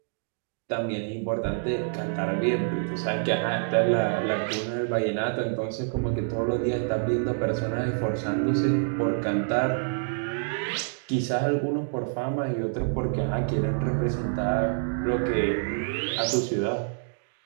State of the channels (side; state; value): left; silent; digital silence